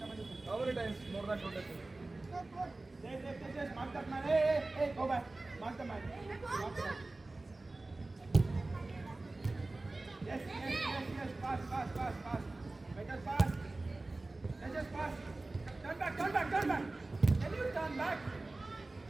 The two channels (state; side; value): quieter; left; 3.1 dB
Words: come in the center. How many times more than 20? Tejas, mark that man. Hey, go back. Mark the man. Yes. Pass. Better pass. Tejas, pass. Turn back. Can you turn back?